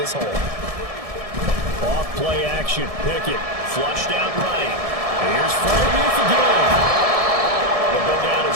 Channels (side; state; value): left; late; 1.7 ms